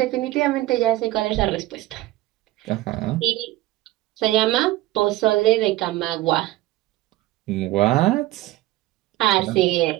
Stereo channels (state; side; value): quieter; left; 16.8 dB